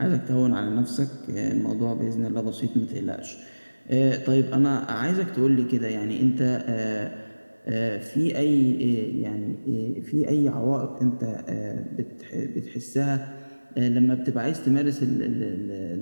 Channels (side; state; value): both; inverted; correlation -1.00